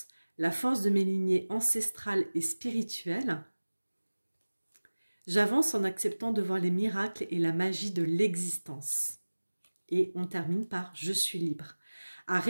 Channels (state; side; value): inverted; both; correlation -1.00